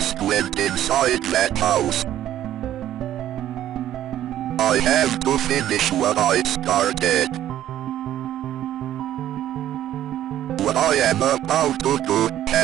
went inside that house. I have to finish what I started. What I am about to do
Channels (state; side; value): quieter; left; 12.1 dB